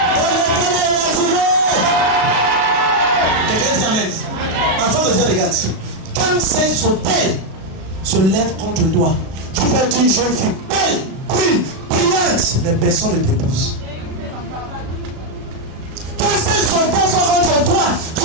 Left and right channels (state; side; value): late; left; 37 ms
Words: Enfant de Dieu, regarde. Quand ces hôtels se lèvent contre toi, tu peux être une jeune fille belle, brune, brillante, mais personne ne t'épouse. Quand ces hôtels sont contre toi, tu